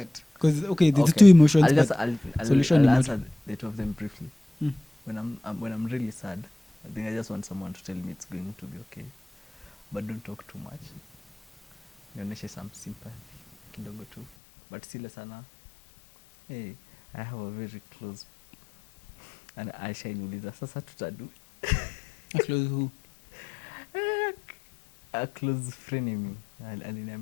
Because there's two emotions, but solution ni moja. The two of them briefly. When I'm really sad, I think I just want someone to tell me it's going to be okay, but don't talk too much. Nionyeshe some sympathy kidogo tu, but sile sana. Hey, I have a very close, and Aisha niuliza sasa tutadu. A close who? A close frenemy.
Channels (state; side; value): drops out; right; at 14.2 s